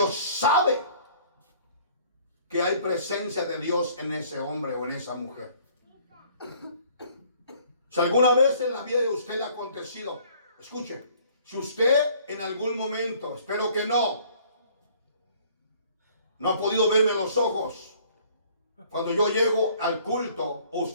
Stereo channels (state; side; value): inverted; both; correlation -0.57